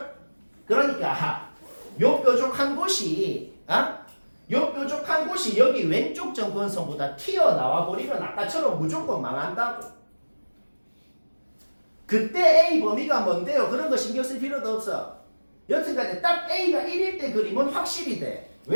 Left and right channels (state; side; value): inverted; both; correlation -1.00